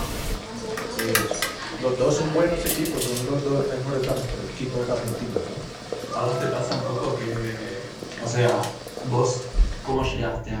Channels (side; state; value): both; identical; correlation 1.00